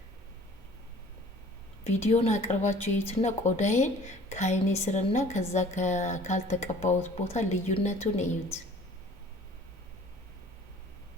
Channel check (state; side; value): normal; both; correlation 0.50